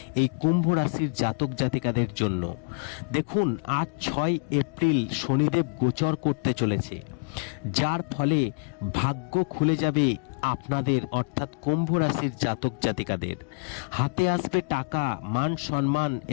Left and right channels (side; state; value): right; quieter; 37.0 dB